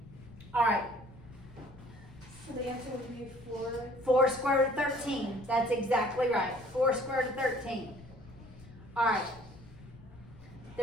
All right. So the answer would be 4. 4 square root of 13. That's exactly right. 4 square root of 13. All right.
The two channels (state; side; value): noise; left; rumble, 20 dB below the sound